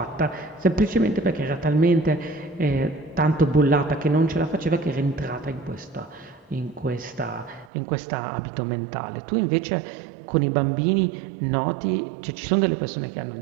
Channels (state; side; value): drops out; left; at 7.7 s